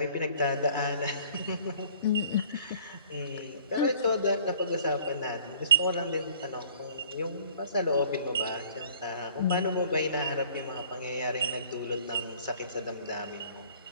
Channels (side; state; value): both; inverted; correlation -0.53